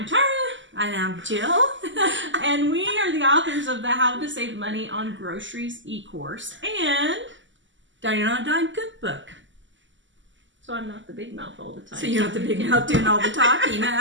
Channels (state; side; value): late; left; 0.54 ms